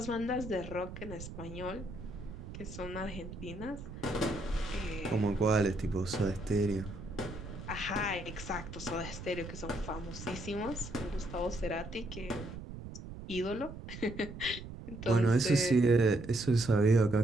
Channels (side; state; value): right; noise; rumble, 11 dB below the sound